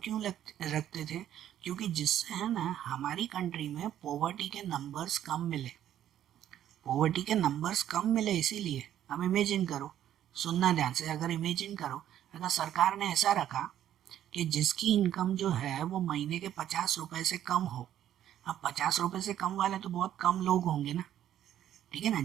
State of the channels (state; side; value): quieter; left; 11.2 dB